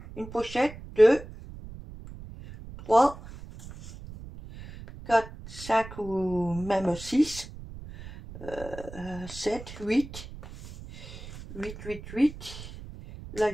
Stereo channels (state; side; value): noise; right; rumble, 14 dB below the sound